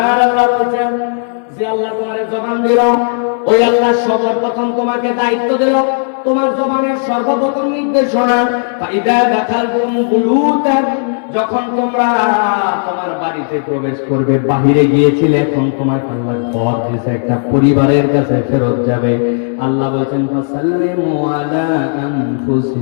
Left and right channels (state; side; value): silent; right; 71 dB below the other